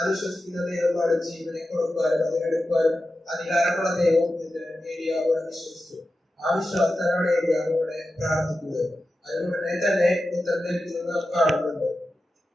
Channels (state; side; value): normal; both; correlation 0.92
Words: വിശ്വസിക്കുന്ന ദൈവമാണ് ജീവനെ കൊടുക്കാനും അത് എടുക്കാനും അധികാരമുള്ള ദൈവം എന്ന് ഏലിയാവ് വിശ്വസിച്ചു. ആ വിശ്വാസത്തിലാണ് ഏലിയാവ് ഇവിടെ പ്രാർത്ഥിക്കുന്നത്. അതുകൊണ്ടേ തന്നെ ഉത്തരം ലഭിക്കുന്നത് നാം കാണുന്നുണ്ട്.